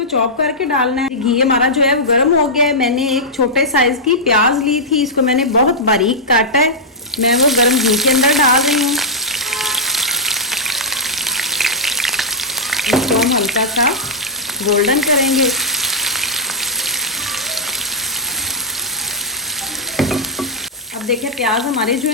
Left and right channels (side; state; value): both; normal; correlation -0.08